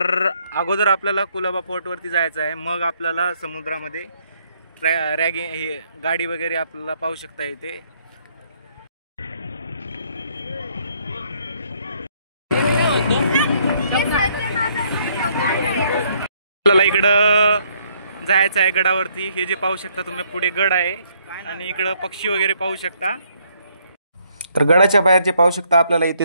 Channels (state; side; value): inverted; both; correlation -0.69